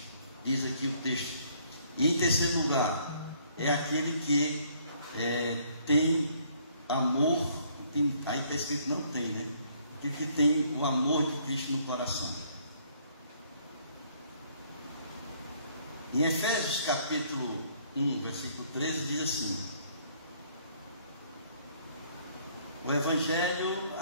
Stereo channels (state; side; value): inverted; both; correlation -0.64